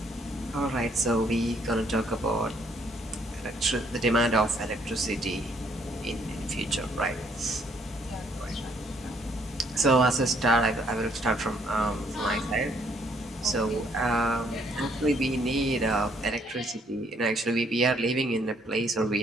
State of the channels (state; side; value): normal; both; correlation 0.67